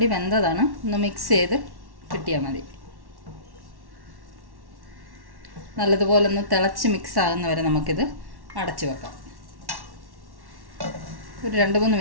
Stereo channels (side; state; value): left; late; 1.1 ms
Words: വെന്തതാണ്, ഒന്ന് മിക്സ് ചെയ്ത് കിട്ടിയാൽ മതി. നല്ലതുപോലെ ഒന്ന് തിളച്ച് മിക്സ് ആകുന്നവരെ നമുക്കിത് അടച്ച് വെക്കാം. ഒരു 2-3